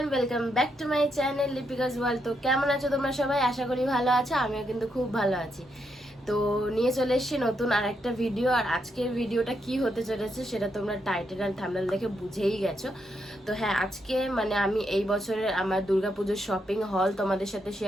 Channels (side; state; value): both; normal; correlation 0.80